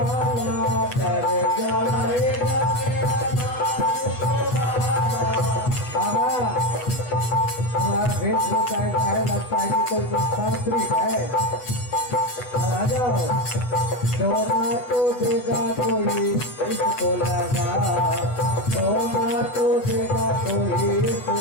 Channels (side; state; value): right; late; 8.0 ms